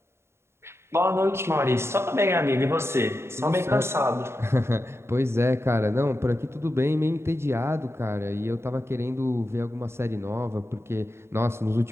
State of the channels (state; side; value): late; left; 0.12 ms